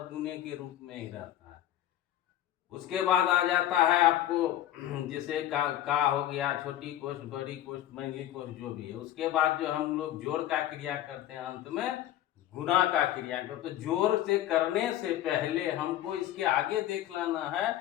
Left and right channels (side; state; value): right; quieter; 12.9 dB